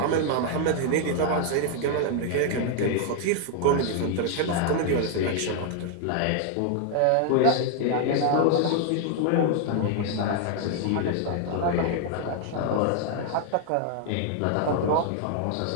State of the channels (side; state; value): both; different; correlation 0.00